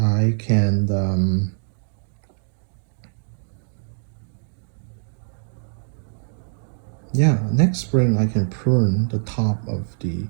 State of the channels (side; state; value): left; silent; digital silence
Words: can next spring I can prune the top of the